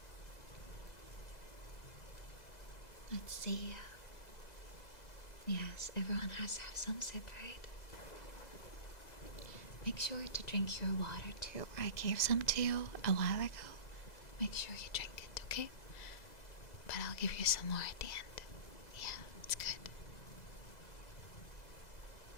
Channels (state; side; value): late; right; 2.0 ms